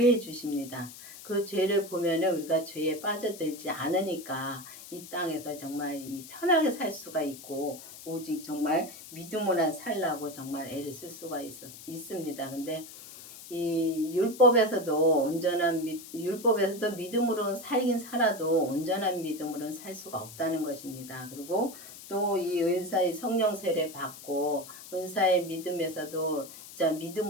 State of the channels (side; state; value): left; noise; hiss, 15 dB below the sound